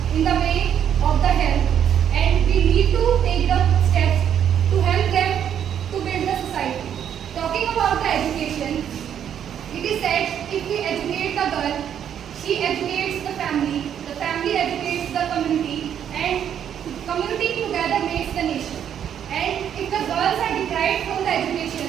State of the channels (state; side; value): quieter; left; 9.2 dB